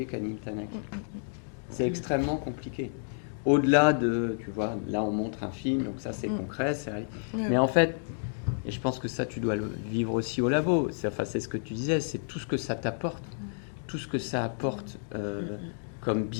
Camille Tanaki. C'est extrêmement compliqué. Au-delà de, tu vois, là on montre un film, donc ça c'est concret, c'est vrai. Mais en fait, et je pense que ça tu dois le vivre aussi au labo, c'est ce que tu disais, c'est tout ce que ça t'apporte, tout ce que ça apporte comme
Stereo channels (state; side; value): silent; right; digital silence